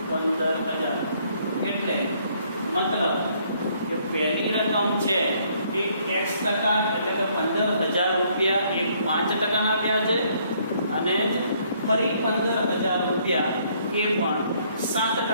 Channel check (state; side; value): inverted; both; correlation -0.66